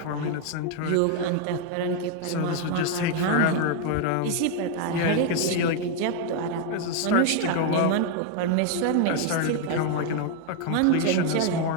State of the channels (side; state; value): both; different; correlation 0.00